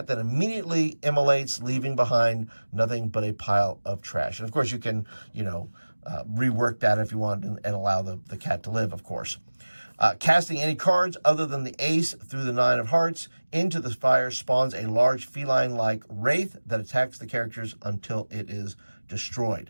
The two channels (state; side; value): inverted; both; correlation -1.00